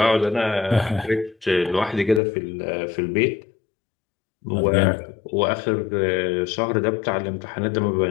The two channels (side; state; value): right; drops out; at 2.2 s